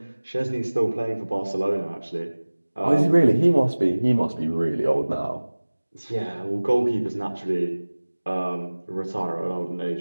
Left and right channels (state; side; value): inverted; both; correlation -1.00